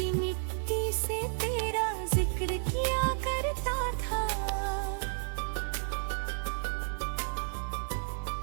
मिट्टी से तेरा जिक्र किया करता था।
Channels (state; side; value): silent; left; 56 dB below the other